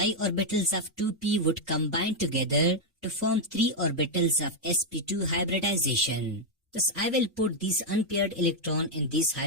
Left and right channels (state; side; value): normal; both; correlation 0.01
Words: orbitals of 2p would combine together to form 3 orbitals of sp2 hybridization. Thus I will put these unpaired electron in these